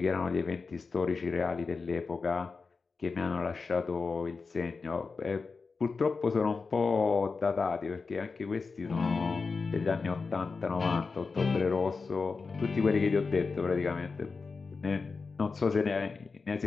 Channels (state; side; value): quieter; right; 4.5 dB